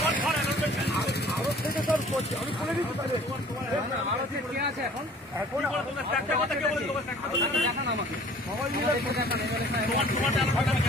আরো থেকে সব করছি, আমি খুলে দিচ্ছি। কে আছে এখন? এখন একটা কথা কে বলে তোমার দেখান আমাকে, সবাই মিলে আমি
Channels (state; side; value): normal; both; correlation 0.51